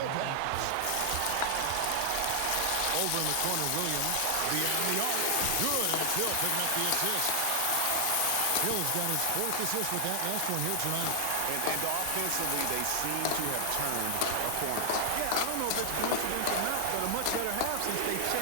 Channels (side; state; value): both; different; correlation 0.00